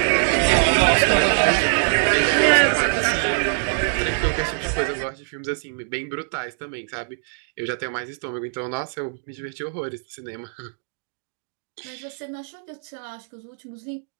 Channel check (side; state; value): left; silent; digital silence